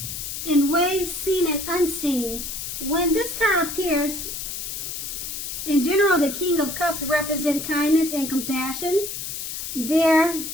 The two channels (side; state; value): left; noise; hiss, 6 dB below the sound